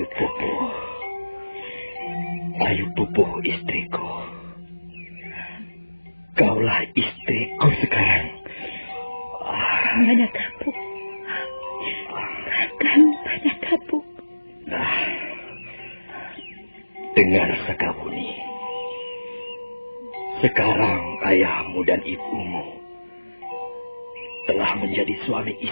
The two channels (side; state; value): both; inverted; correlation -1.00